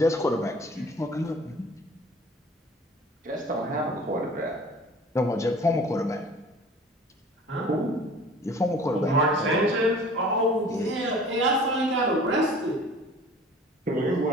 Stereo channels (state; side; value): normal; both; correlation 0.46